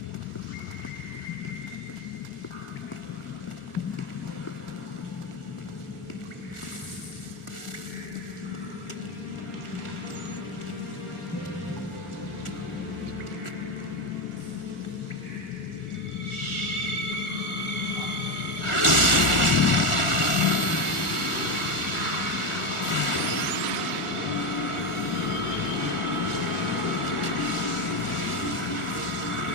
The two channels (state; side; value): late; right; 1.4 ms